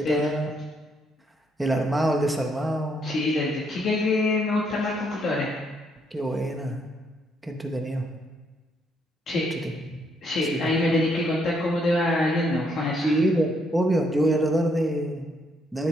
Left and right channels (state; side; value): normal; both; correlation 0.73